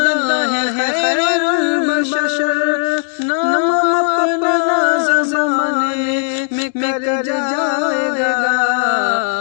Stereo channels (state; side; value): silent; right; digital silence